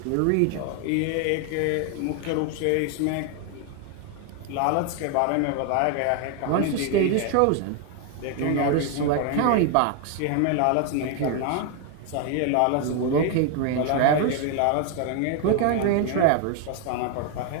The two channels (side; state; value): both; different; correlation 0.01